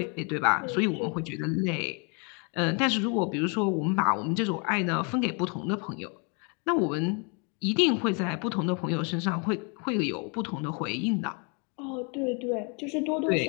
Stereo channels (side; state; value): right; quieter; 35.2 dB